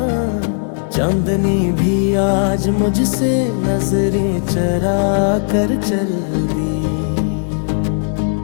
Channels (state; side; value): silent; right; digital silence